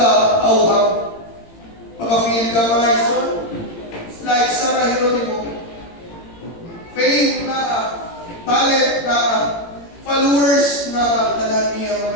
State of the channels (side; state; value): right; late; 18 ms